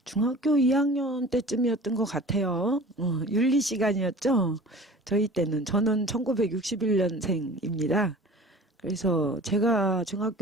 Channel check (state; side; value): normal; both; correlation 0.42